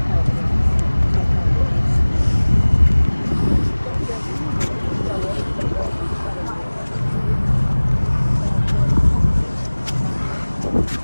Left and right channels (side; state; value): both; inverted; correlation -1.00